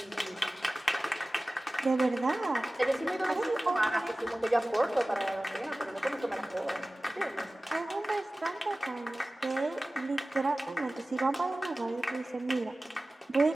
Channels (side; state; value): both; normal; correlation 0.97